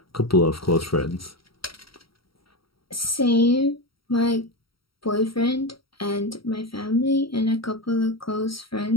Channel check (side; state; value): right; late; 0.75 ms